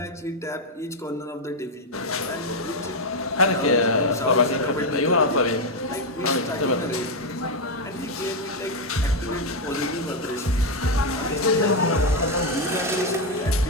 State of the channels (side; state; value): both; normal; correlation 0.03